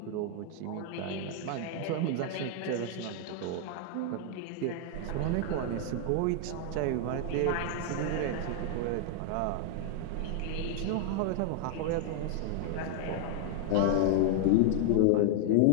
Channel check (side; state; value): both; different; correlation 0.00